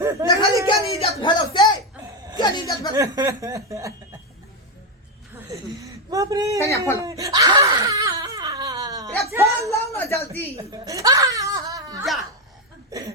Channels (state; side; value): normal; both; correlation 0.06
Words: के नहीं इज्जत भेल से के नहीं इज्जत भेल बाप रे कन्या फोन रे फोन लाओ ना जल्दी जा